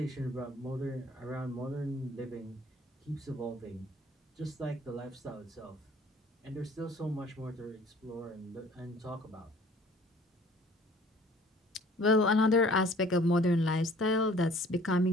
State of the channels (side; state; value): both; normal; correlation 0.52